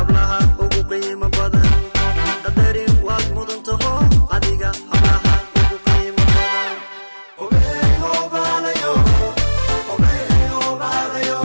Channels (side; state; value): both; inverted; correlation -1.00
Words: ugu qiimo badan qadarin waad mudantaho adiga hablaha ugu qiimo badan obeyo balayo obeyo balayo